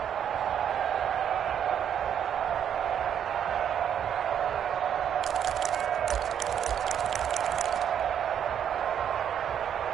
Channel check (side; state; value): left; quieter; 9.0 dB